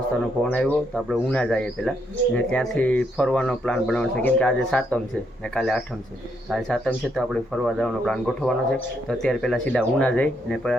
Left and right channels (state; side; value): normal; both; correlation 0.76